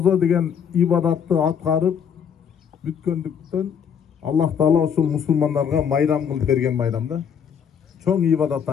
degen ibadatты atkarıp bütkөндүктөн Allah Taala ошол мусулмандарга майрам кылып берген майрамда. Чоң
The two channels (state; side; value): quieter; right; 7.6 dB